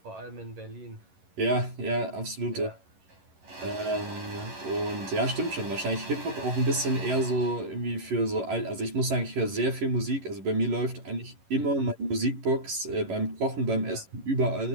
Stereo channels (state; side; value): late; left; 11 ms